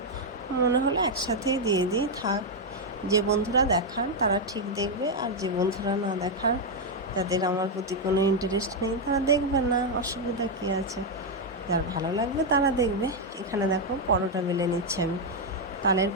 মনে হলো একসাথেই দিয়ে দিই, থাক। যে বন্ধুরা দেখার তারা ঠিক দেখবে, আর যে বন্ধুরা না দেখার, যাদের আমার প্রতি কোনো ইন্টারেস্ট নেই, তারা দেখবে না, অসুবিধা কী আছে। যার ভালো লাগবে তারা দেখবে। এখানে দেখো পরোটা বেলে নিচ্ছি আমি, তালের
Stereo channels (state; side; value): normal; both; correlation 0.01